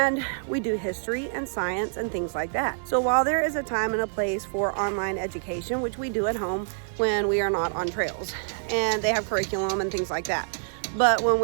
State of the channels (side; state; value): left; silent; digital silence